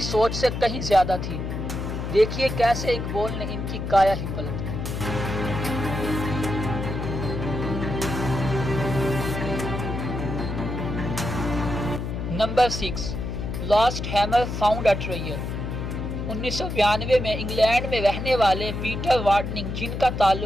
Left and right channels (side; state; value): left; noise; hum, 4 dB below the sound